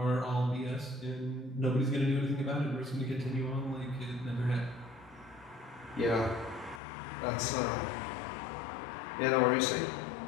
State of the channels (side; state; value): right; drops out; at 6.8 s